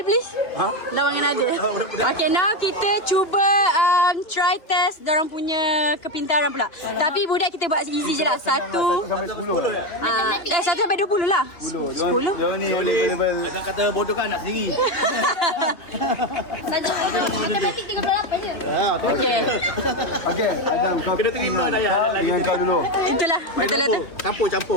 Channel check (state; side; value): late; right; 2.6 ms